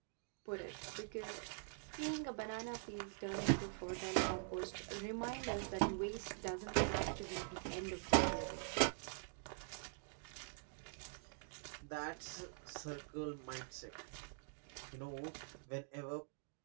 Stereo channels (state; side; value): silent; left; digital silence